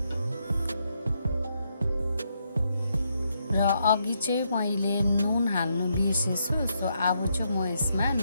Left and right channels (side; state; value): both; inverted; correlation -0.78